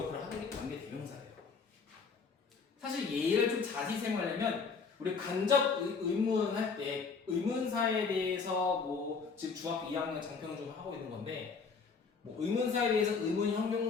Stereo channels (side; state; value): right; quieter; 5.2 dB